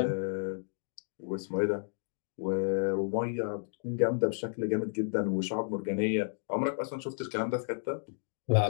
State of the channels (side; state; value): right; silent; digital silence